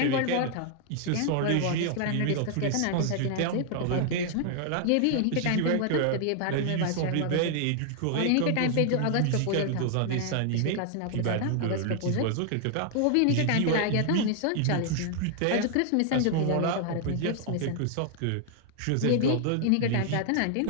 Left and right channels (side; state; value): both; different; correlation 0.00